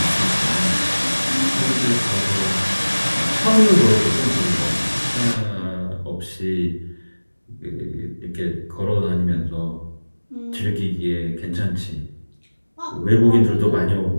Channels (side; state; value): both; inverted; correlation -1.00